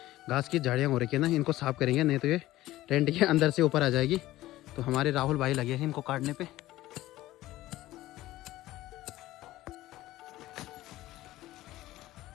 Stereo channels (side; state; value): right; quieter; 16.1 dB